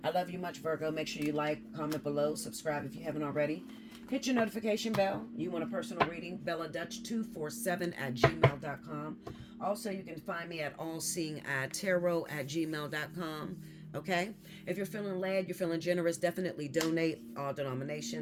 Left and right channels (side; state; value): both; identical; correlation 1.00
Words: I love you much, Virgo. Make sure you like, comment below, subscribe if you haven't already. Hit your notification bell. You want a personal reading? BellaDutch247@gmail.com. Also, you can find me at Allseeingeyetarot@gmail.com. Okay? If you're feeling led, you're feeling generous, definitely donate. All